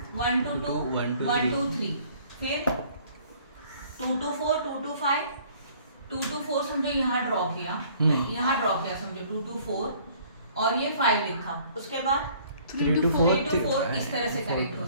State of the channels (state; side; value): inverted; both; correlation -0.56